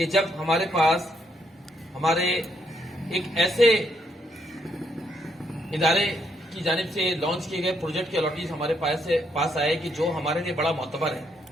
جب ہمارے پاس ہمارے ایک ایسے ادارے کی جانب سے لانچ کیے گئے پروجیکٹ کے الاٹیز ہمارے پاس آئے کہ جو ہمارے لیے بڑا معتبر ہے،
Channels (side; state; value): both; normal; correlation 0.74